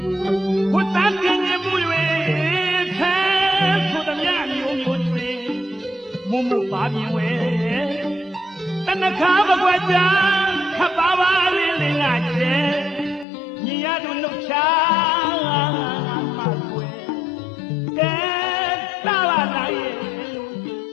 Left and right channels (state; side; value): drops out; right; at 13.2 s